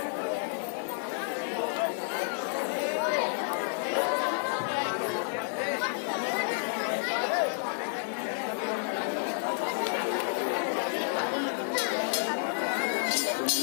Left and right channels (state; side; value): silent; right; digital silence